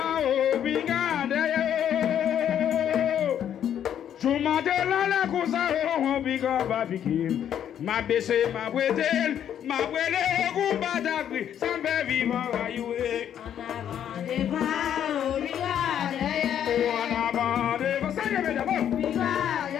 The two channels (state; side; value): quieter; right; 9.7 dB